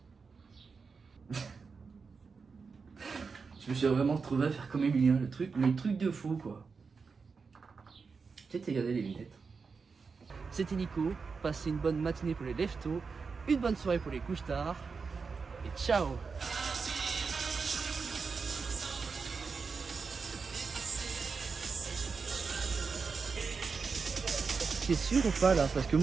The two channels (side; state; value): left; quieter; 5.0 dB